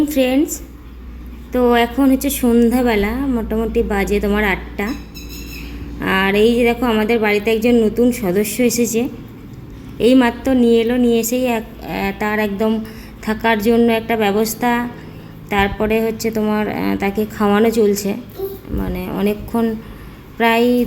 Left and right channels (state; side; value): identical; both; correlation 1.00